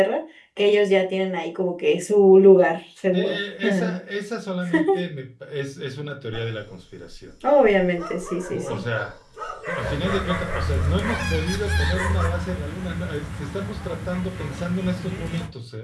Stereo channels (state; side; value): identical; both; correlation 1.00